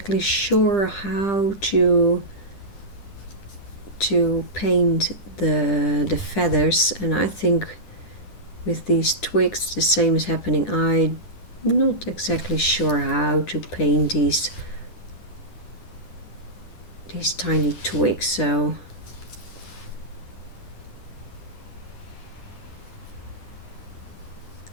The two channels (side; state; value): right; late; 10 ms